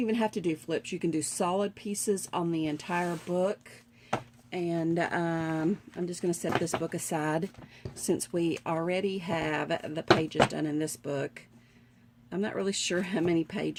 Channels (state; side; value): identical; both; correlation 1.00